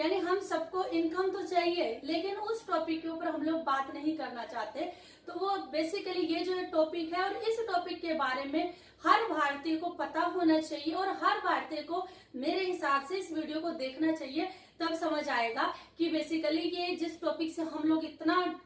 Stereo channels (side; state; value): both; identical; correlation 1.00